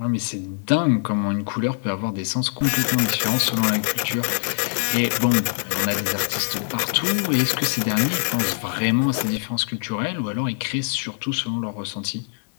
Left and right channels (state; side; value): silent; right; 63 dB below the other